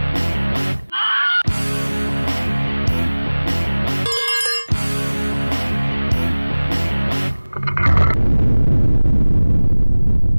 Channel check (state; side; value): inverted; both; correlation -1.00